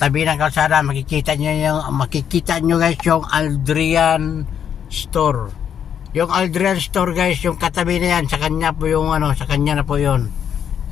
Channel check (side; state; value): right; quieter; 8.6 dB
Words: ng kalsada, makikita nyo guys yung Aldrian Store. Yung Aldrian Store guys, yung katabi na yan, sa kanya po yung sa kanya na po yun.